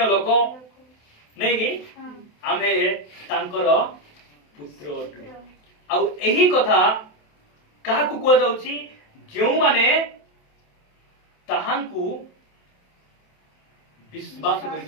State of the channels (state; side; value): late; right; 27 ms